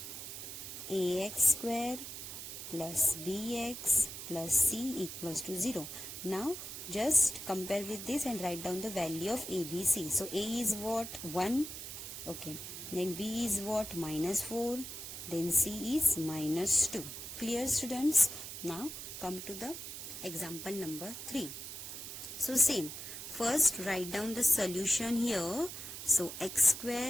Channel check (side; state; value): right; noise; hiss, 9 dB below the sound